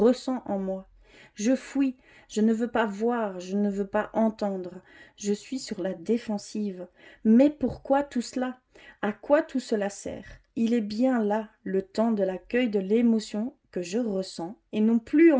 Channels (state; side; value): identical; both; correlation 1.00